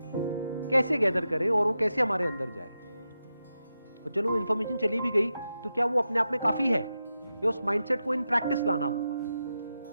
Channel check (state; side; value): inverted; both; correlation -0.89